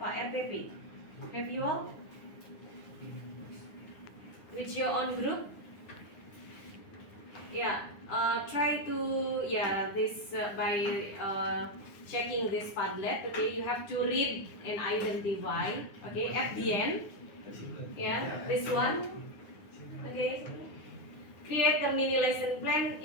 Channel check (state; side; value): late; right; 9.7 ms